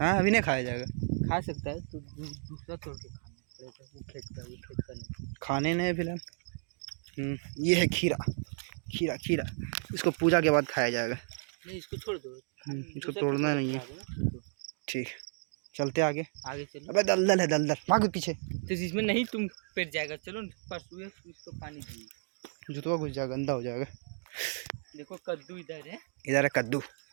हाँ, अभी नहीं खाया जाएगा, खा सकता है तो दूसरा तोड़ के खाना पड़ेगा, वो खेत का नहीं। खाने नहीं फिलहाल। ये है खीरा, खीरा खीरा, इसको पूजा के बाद खाया जाएगा। नहीं इसको छोड़ दो, इसको तोड़ना नहीं है। ठीक, चलते आगे। आगे चलो। अबे दलदल है, दलदल, भागो पीछे। तो इसमें नहीं तुम पेट जाएगा, चलो परसों इसको पानी दिए। जुतवा घुस जाएगा, गंदा हो जाएगा। देखो कद्दू इधर है, इधर है कद्दू।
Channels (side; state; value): left; silent; 56 dB below the other